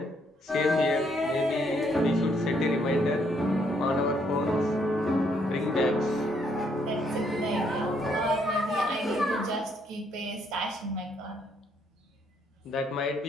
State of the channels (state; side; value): normal; both; correlation 0.71